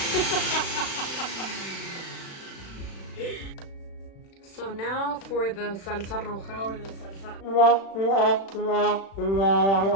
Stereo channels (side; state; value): right; late; 36 ms